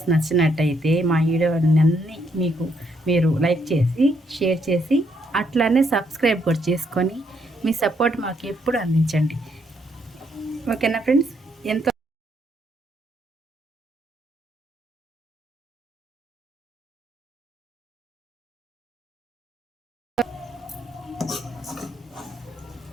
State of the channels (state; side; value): normal; both; correlation 0.74